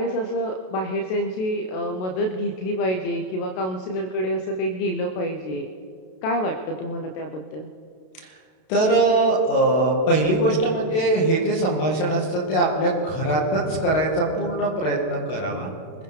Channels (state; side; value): late; right; 32 ms